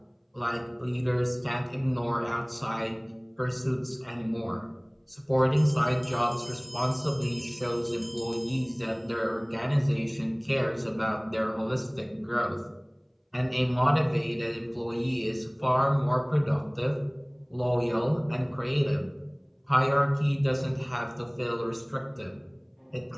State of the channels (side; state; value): both; identical; correlation 1.00